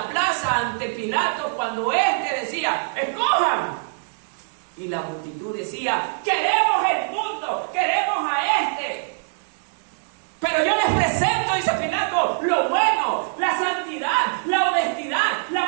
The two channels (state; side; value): silent; left; digital silence